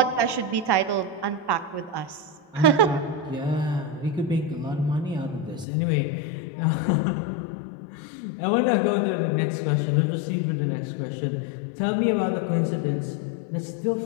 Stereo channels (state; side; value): drops out; right; at 5.7 s